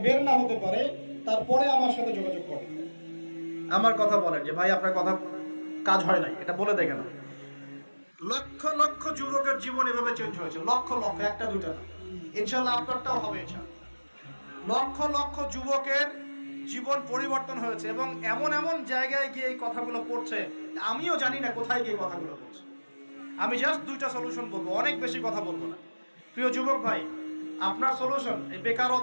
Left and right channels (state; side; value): inverted; both; correlation -1.00